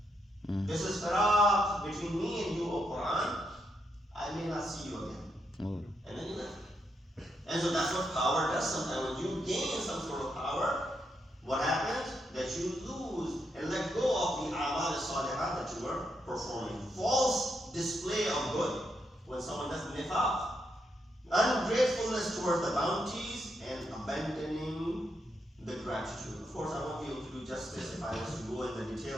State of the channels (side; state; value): both; normal; correlation 0.80